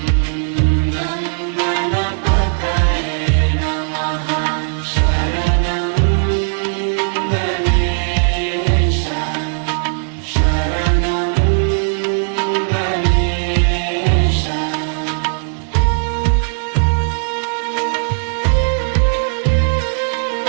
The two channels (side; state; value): left; silent; digital silence